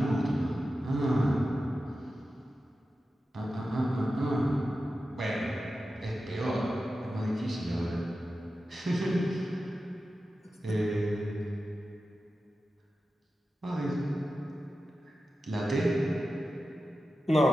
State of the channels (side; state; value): both; normal; correlation 0.92